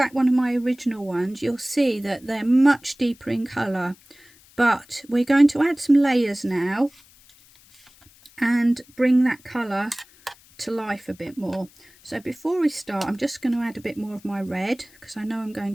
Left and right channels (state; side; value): noise; left; hiss, 27 dB below the sound